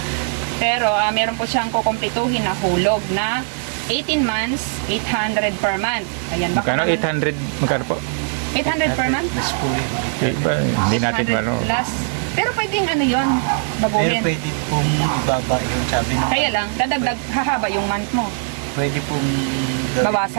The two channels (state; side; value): silent; left; 65 dB below the other